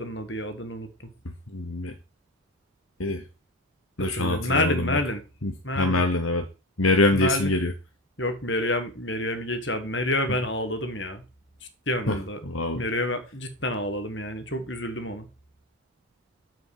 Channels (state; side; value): normal; both; correlation 0.20